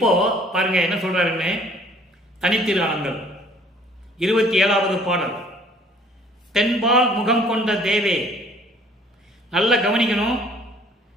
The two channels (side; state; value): both; normal; correlation 0.56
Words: பாருங்க என்ன சொல்றாருன்னு, தனித்திருநாமங்கள் 27வது பாடல். தென்பால் முகம் கொண்ட தேவே. நல்ல கவனிக்கணும்.